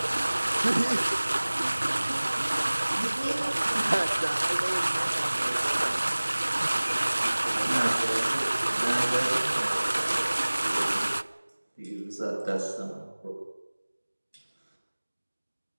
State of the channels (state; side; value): inverted; both; correlation -1.00